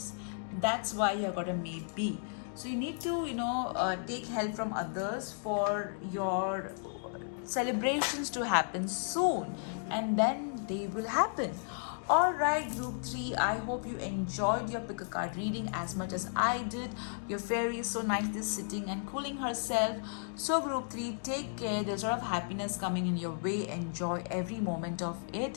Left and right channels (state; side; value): silent; right; digital silence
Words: That's why you got a maybe. So you need to take help from others for your celebrations to happen soon, and then they will happen. Alright, group 3, I hope you enjoyed your pick a card reading as much as I did. Your fairy is so nicely sitting and cooling herself. So group 3, take care. There's a lot of happiness coming in your way. Enjoy every moment of